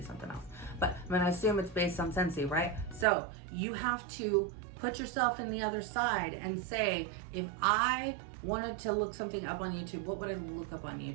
something else. But I'm gonna assume it's based on Scentsy, right? So you have to put yourself in the other side and say, if I wanted to look something up on YouTube, what would I look up on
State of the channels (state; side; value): drops out; left; at 3.1 s